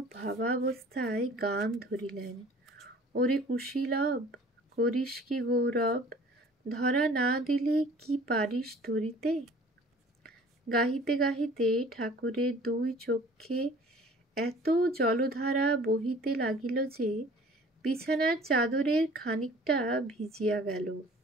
ভাবাবস্থায় গান ধরিলেন। ওরে কুশীলব, করিস কি গৌরব, ধরা না দিলে কি পারিস ধরিতে? গাহিতে গাহিতে ঠাকুরের দুই চক্ষে এত জলধারা বহিতে লাগিল যে বিছানার চাদরের খানিকটা ভিজিয়া গেল।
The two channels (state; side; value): normal; both; correlation 0.49